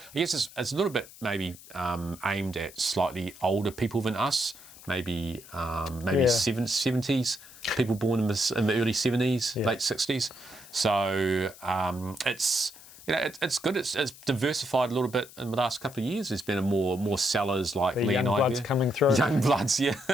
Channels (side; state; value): left; noise; hiss, 19 dB below the sound